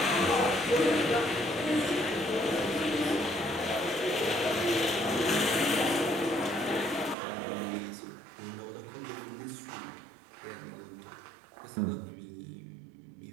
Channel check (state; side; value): drops out; left; at 7.2 s